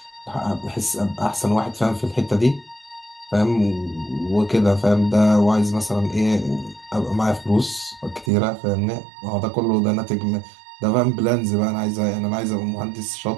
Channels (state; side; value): drops out; left; at 8.3 s